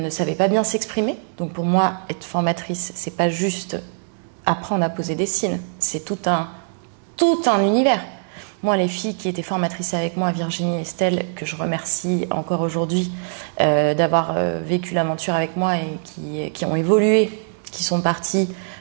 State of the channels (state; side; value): silent; left; digital silence